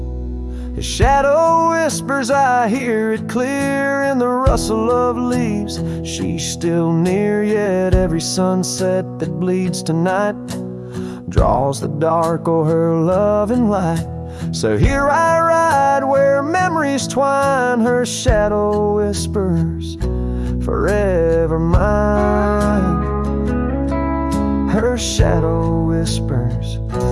His shadow whispers, I hear it clear in the rustle of leaves. She's still near, yet every sunset that bleeds tonight draws the dark o'er her loving light. So here I ride where memories twine, her shadow whispers, forever mine. Her shadow whispers,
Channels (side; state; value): both; identical; correlation 1.00